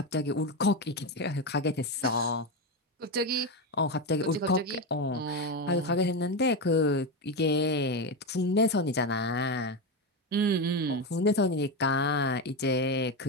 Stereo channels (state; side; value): normal; both; correlation 0.13